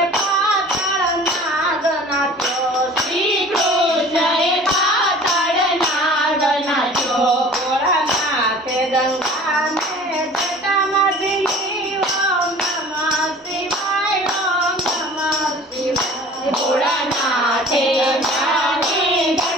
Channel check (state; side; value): normal; both; correlation 0.45